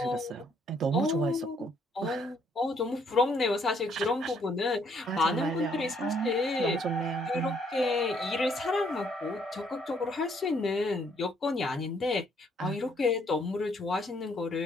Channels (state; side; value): normal; both; correlation 0.68